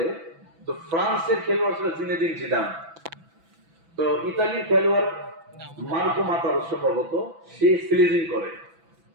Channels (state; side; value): late; left; 6.0 ms